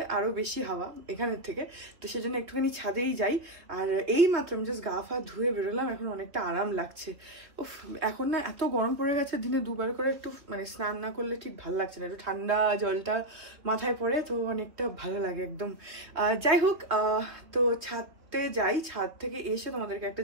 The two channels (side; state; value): left; late; 3.4 ms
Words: আরো বেশি হাওয়া এখানের থেকে, তো সেজন্য একটুখানি ছাদেই যাই। আর এই মাত্র আমি জাস্ট গা ফা ধুয়ে বেরোলাম, এখন অনেকটা আরাম লাগছে। উফ, এখন না এত গরম পড়ে গেছে, দিনে দুবার করে একটু মানে স্নান না করলে ঠিক ভালো লাগছে না, একটু ঠান্ডা জলটা মাথায় পড়ে তো অনেকটা ভালো লাগে একদম। যাই হোক, তো ছাদে যাই, ছাদ থেকে এসে তোমাদেরকে একটা